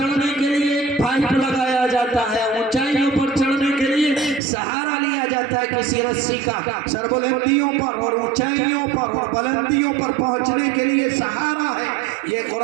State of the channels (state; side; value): drops out; left; at 4.4 s